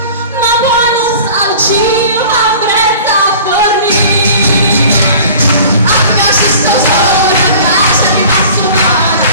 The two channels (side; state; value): both; inverted; correlation -0.44